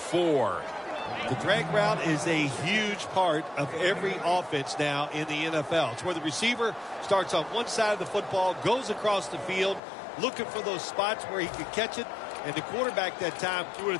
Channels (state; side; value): drops out; right; at 9.8 s